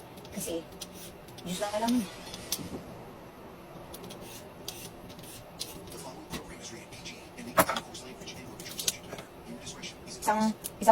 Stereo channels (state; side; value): identical; both; correlation 1.00